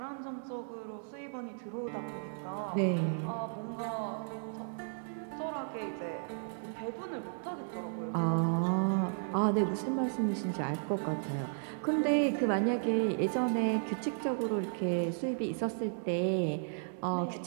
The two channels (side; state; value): left; silent; digital silence